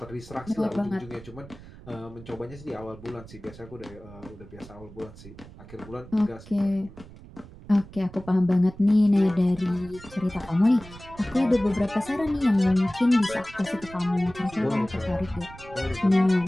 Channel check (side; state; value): right; noise; rumble, 18 dB below the sound